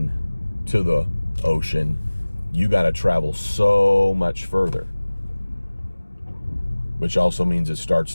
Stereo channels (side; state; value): both; inverted; correlation -1.00